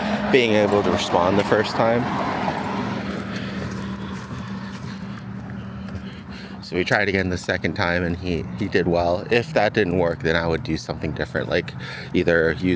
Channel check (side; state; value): both; identical; correlation 1.00